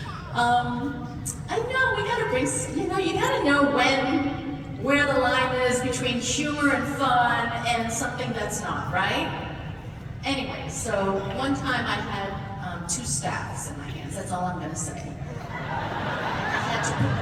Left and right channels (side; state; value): both; identical; correlation 1.00